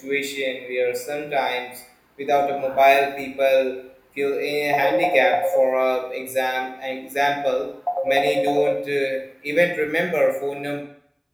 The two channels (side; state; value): both; identical; correlation 1.00